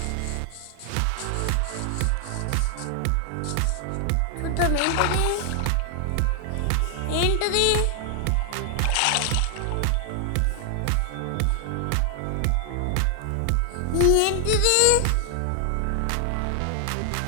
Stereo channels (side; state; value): both; different; correlation 0.00